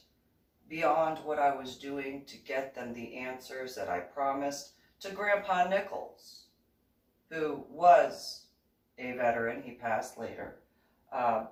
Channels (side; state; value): both; identical; correlation 1.00